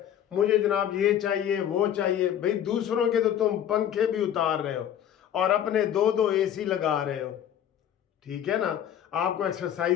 मुझे जनाब ये चाहिए वो चाहिए। भाई दूसरों के तो तुम पंखे भी उतार रहे हो और अपने दो एसी लगा रहे हो, ठीक है ना। आपको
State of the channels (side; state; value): right; quieter; 10.1 dB